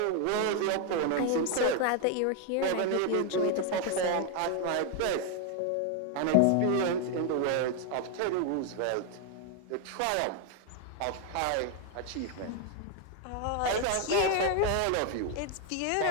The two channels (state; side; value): different; both; correlation 0.01